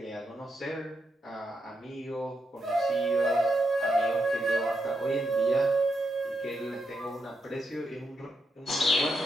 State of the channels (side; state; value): both; normal; correlation 0.83